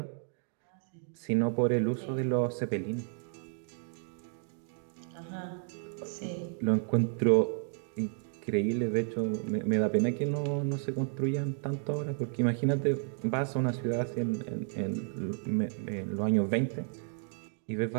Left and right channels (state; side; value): silent; left; 56 dB below the other